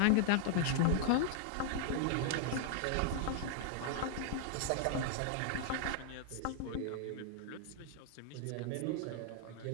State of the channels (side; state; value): both; different; correlation 0.00